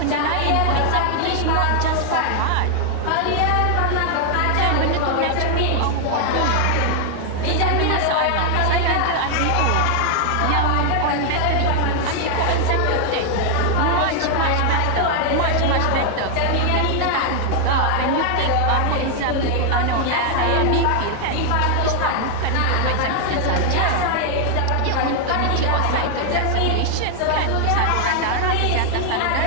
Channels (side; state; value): both; different; correlation 0.00